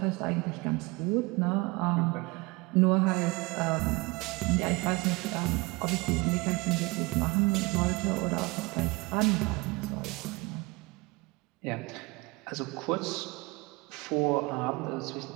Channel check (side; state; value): left; quieter; 25.1 dB